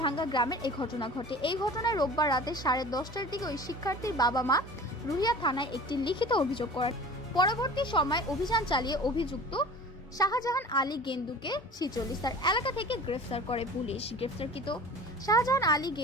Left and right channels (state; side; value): normal; both; correlation 0.41